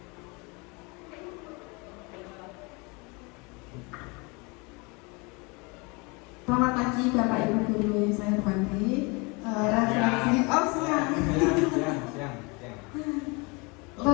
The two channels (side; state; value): right; quieter; 28.7 dB